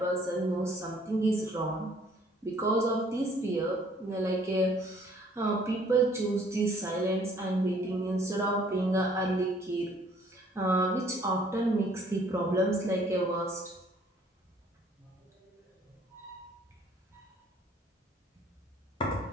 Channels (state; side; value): normal; both; correlation 0.60